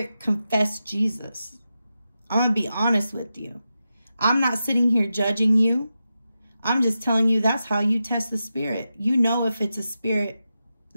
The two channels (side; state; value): both; inverted; correlation -0.90